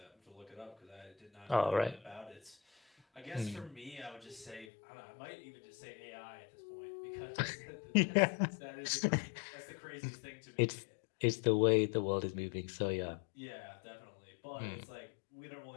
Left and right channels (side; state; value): right; drops out; at 4.7 s